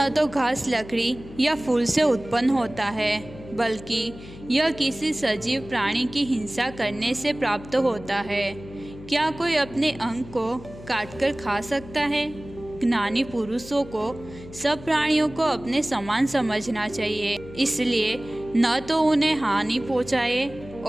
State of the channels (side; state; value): left; noise; hum, 16 dB below the sound